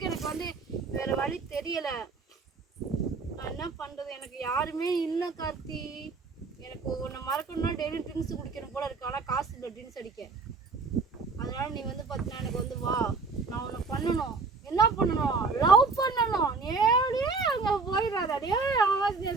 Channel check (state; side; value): quieter; left; 4.3 dB